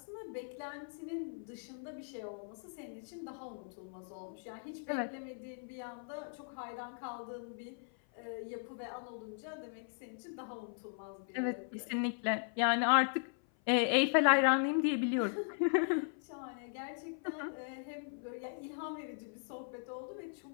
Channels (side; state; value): right; silent; 52 dB below the other